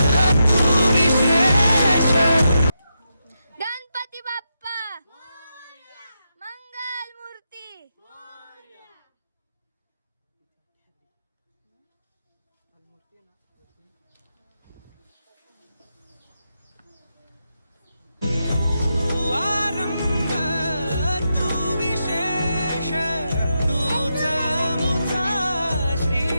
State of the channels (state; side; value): inverted; both; correlation -0.86